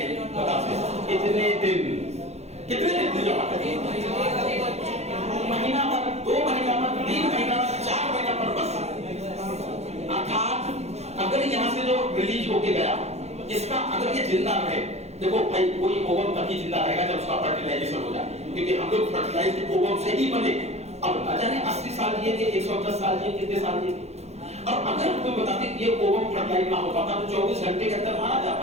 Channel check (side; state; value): left; late; 0.31 ms